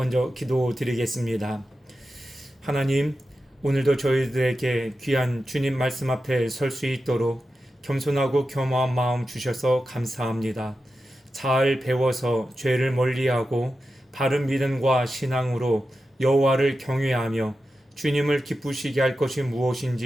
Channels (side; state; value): both; normal; correlation 0.91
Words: 기도드리겠습니다. 하나님, 오늘도 저희들에게 귀한 주님 말씀 앞에 설 수 있도록 겸손하고 겸허한 마음 주셔서 감사합니다. 잘 배워서 죄를 멀리하고 바른 믿음과 신앙으로 여호와를 경외하며 주님을 기쁘시게 할 것이